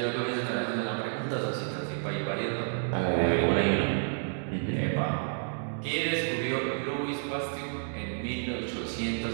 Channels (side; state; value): left; silent; digital silence